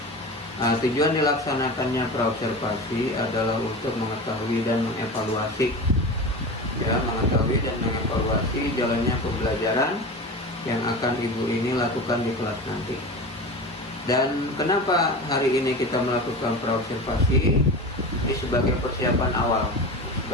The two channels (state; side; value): normal; both; correlation 0.28